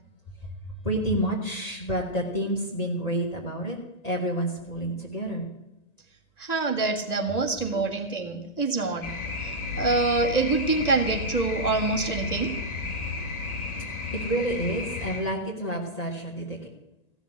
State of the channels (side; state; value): right; late; 1.9 ms